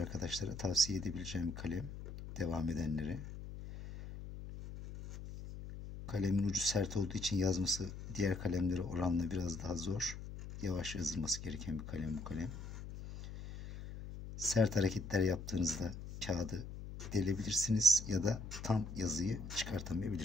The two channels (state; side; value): noise; left; hum, 10 dB below the sound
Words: tavsiye edebileceğim bir kalem, devam edenlere. Kalemin ucu sert olduğu için yazması diğer kalemlere oranla biraz daha zor. Yavaş yazılması gereken bir kalem bu kalem. Sert hareketler yaptığınızda kağıdı delebilirsiniz ya da tam yazıyı